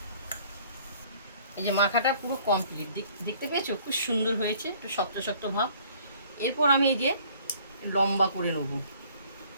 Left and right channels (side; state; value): both; inverted; correlation -0.56